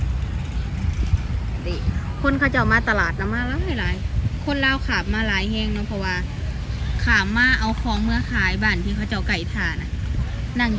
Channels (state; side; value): identical; both; correlation 1.00